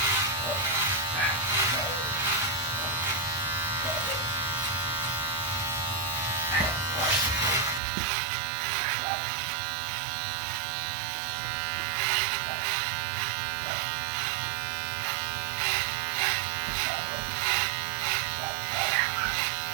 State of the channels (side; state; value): left; drops out; at 7.8 s